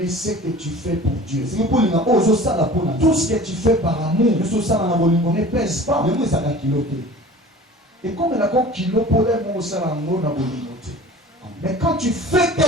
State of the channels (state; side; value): normal; both; correlation 0.42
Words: ce que tu fais pour Dieu. Tout ce que tu fais par amour ne pèse pas. Et comme il a un kilo pour les mots, mais quand tu fais